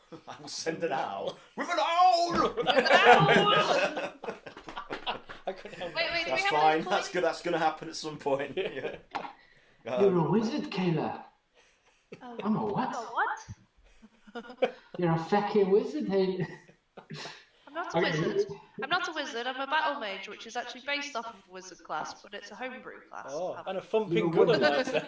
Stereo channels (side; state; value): both; identical; correlation 1.00